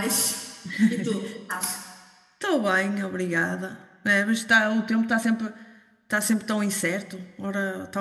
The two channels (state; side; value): identical; both; correlation 1.00